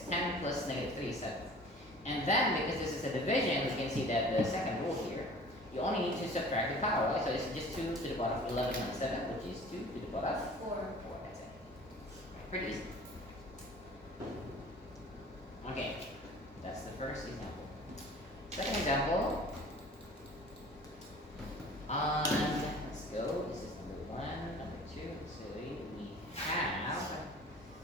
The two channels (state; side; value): normal; both; correlation 0.46